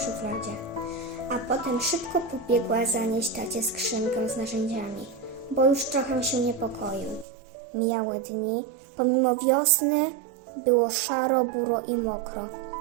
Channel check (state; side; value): drops out; left; at 7.2 s